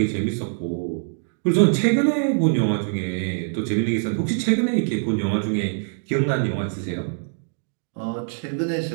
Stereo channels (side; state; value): left; silent; digital silence